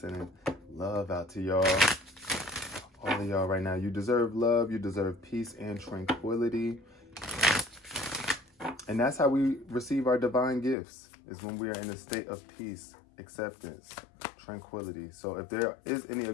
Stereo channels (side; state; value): right; drops out; at 10.8 s